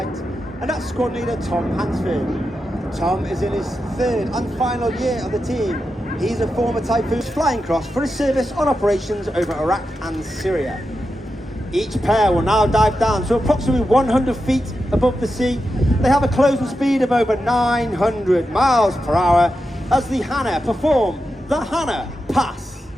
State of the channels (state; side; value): normal; both; correlation 0.89